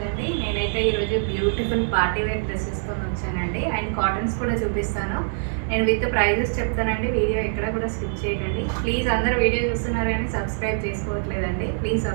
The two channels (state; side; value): silent; left; digital silence